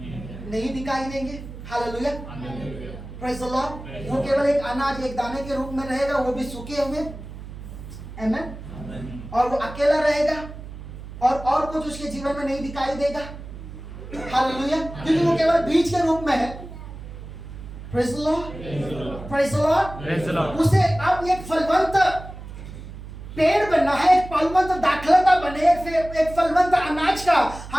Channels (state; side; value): noise; right; hum, 12 dB below the sound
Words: नहीं दिखाई देंगे। Hallelujah, praise the Lord. वो केवल एक अनाज, एक दाने के रूप में रहेगा, वो भी सूखे हुए। आमीन। और वो अकेला रहेगा और कुछ उसके जीवन में नहीं दिखाई देगा। हालेलुया, क्योंकि वो केवल बीज के रूप में है। Praise the Lord, praise the Lord. Praise the Lord. उसे अब एक फलवंत पेड़ बनना है, एक फलवंत दाखलता बने, एक फलवंत अनाज का,